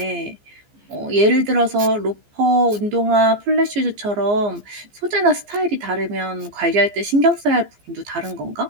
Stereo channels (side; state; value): left; late; 14 ms